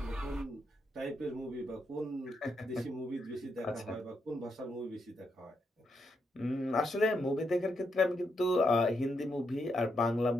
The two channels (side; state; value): both; normal; correlation 0.80